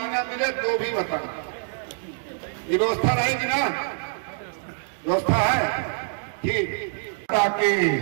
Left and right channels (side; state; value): left; silent; digital silence